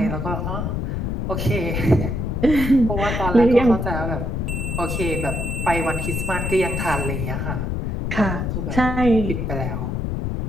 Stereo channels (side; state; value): left; noise; rumble, 2 dB below the sound